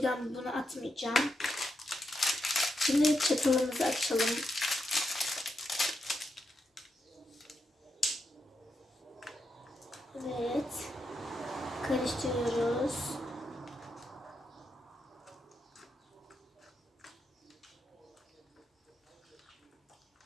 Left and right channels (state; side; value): normal; both; correlation 0.84